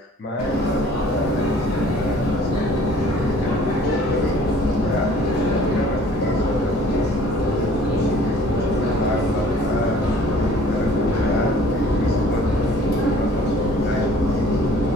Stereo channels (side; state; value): both; normal; correlation 0.53